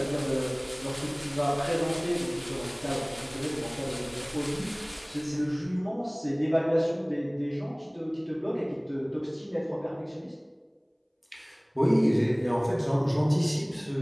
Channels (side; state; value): both; identical; correlation 1.00